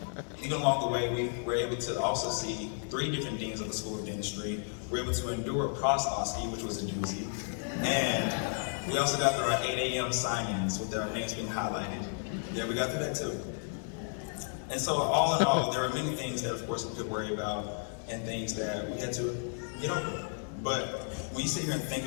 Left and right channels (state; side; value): silent; right; 56 dB below the other